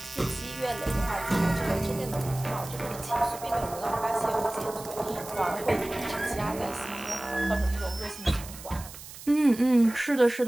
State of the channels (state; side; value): noise; right; hiss, 15 dB below the sound